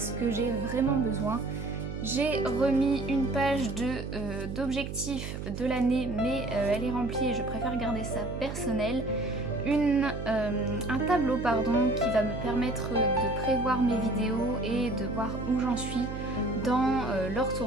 que j'ai vraiment besoin. J'ai remis une page d'objectifs de l'année, mais elle est remplie et je préfère garder ça personnel. Un tableau qui va me permettre de prévoir mes vidéos et de voir où j'en suis dans leur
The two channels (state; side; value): noise; right; hum, 7 dB below the sound